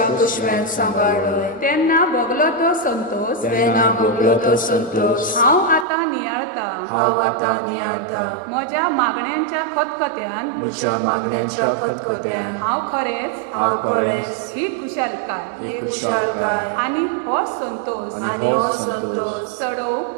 कुशव्यान सांभाळलोय, तेन्ना भोगलो तो संतोष, तेन्ना भोगलो तो संतोष, हांव आतां नियाळता, हांव आतां नियाळता, म्हज्या मागण्यांच्या खतखत्यान, म्हज्या मागण्यांच्या खतखत्यान, हांव खरेंच हांव खरेंच ही खुशालकाय ही खुशालकाय आणि हो संतोष आनी हो संतोष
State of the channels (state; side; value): drops out; left; at 5.9 s